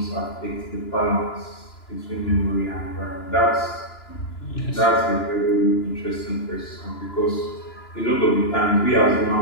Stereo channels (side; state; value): right; late; 2.9 ms